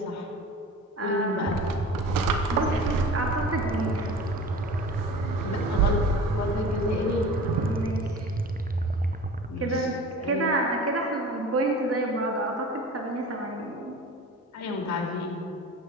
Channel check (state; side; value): normal; both; correlation 0.39